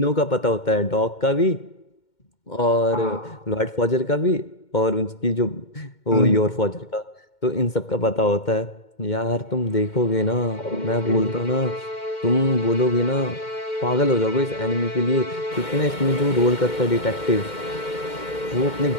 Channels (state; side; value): late; right; 2.2 ms